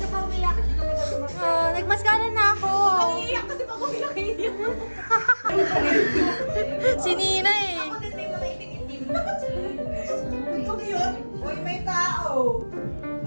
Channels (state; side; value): inverted; both; correlation -1.00